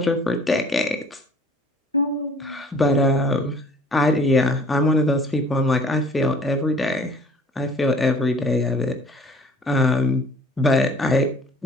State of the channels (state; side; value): normal; both; correlation 0.52